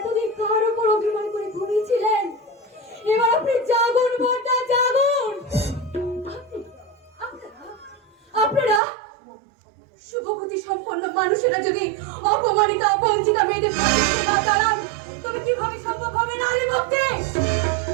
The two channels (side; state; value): left; drops out; at 8.8 s